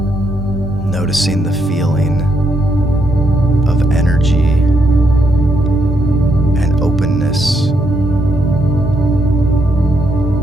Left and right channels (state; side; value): normal; both; correlation 0.77